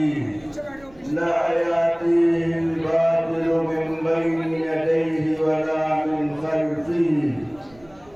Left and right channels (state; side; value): noise; right; rumble, 27 dB below the sound